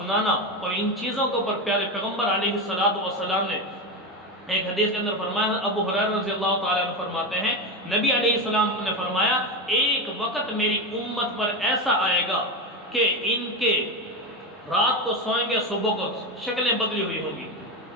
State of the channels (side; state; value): both; normal; correlation 0.16